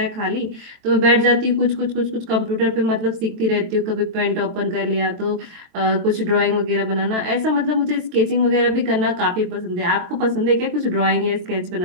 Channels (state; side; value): late; left; 23 ms